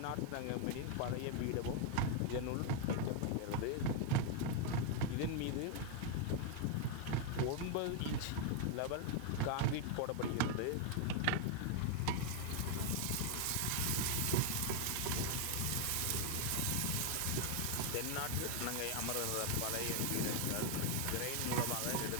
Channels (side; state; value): both; different; correlation 0.00